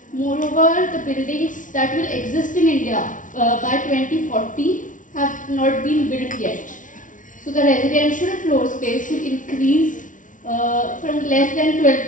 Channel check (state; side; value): late; right; 0.38 ms